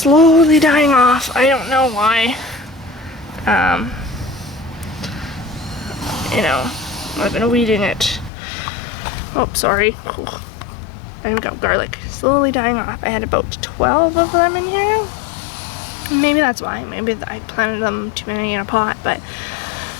dying off. I don't know why. You know, I've been weeding it. Oh, sorry. There we go, garlic. Slowly dying off. I had about 12 of them in here. Maybe that's why. Maybe I planted them too many in a pot, but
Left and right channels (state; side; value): drops out; right; at 8.3 s